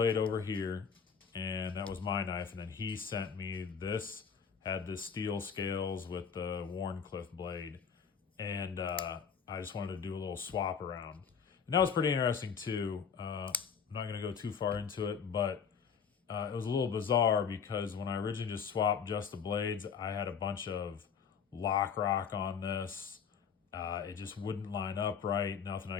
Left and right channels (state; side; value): quieter; right; 6.6 dB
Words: over here, and that was my knife. And then he sent me this, had the steel scales with the Warncliffe blade. And I just wanted to do a little swap around. And that was pretty interesting too. I'm not going to go too far into it, but it was a little bizarre because when I originally just swapped just the blades, I had a bunch of lock rock on this. It just wouldn't line up right. Nothing I